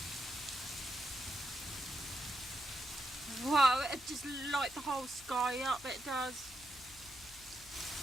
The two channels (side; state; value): left; noise; hum, 21 dB below the sound